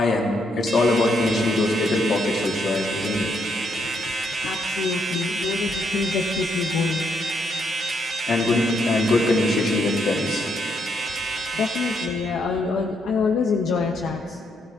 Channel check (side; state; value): both; normal; correlation 0.76